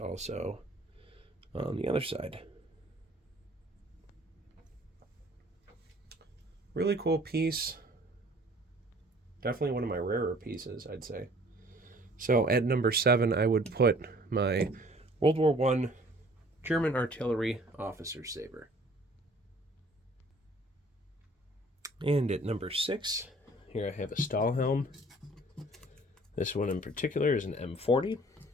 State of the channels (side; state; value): both; normal; correlation 0.53